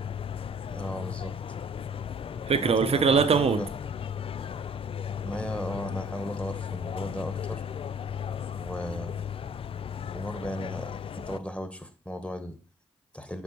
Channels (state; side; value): normal; both; correlation 0.54